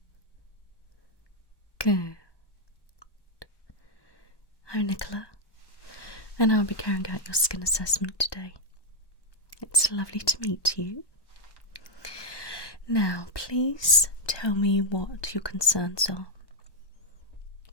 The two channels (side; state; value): right; late; 1.1 ms